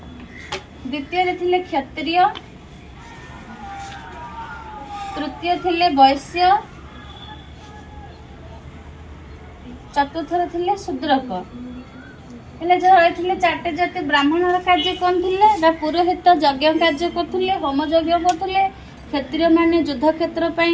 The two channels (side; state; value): both; identical; correlation 1.00